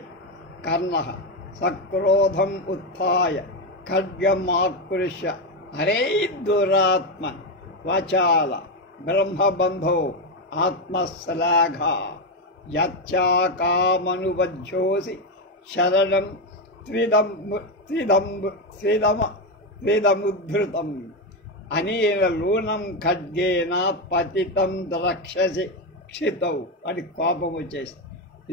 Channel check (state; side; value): normal; both; correlation 0.09